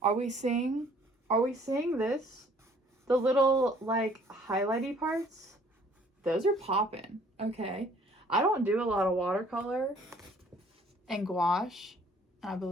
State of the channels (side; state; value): both; normal; correlation 0.58